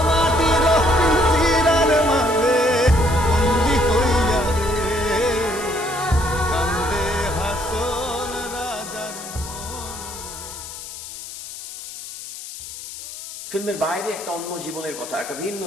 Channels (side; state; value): left; noise; hiss, 12 dB below the sound